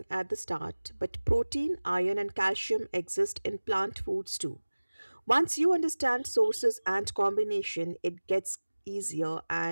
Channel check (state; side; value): inverted; both; correlation -1.00